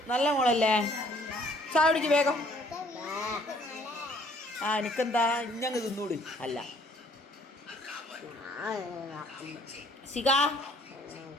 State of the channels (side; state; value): both; normal; correlation 0.60